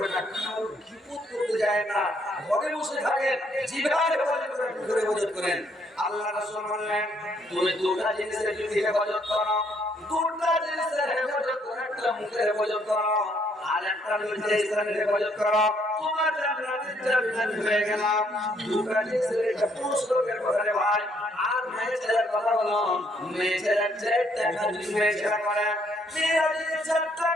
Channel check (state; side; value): normal; both; correlation 0.69